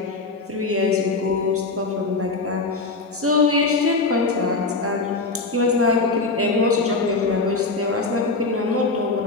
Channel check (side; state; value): right; quieter; 3.7 dB